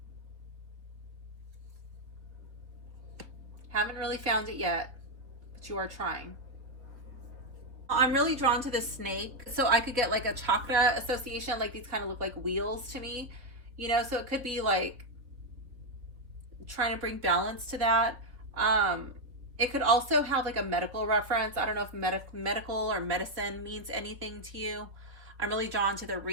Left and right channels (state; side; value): late; left; 3.5 ms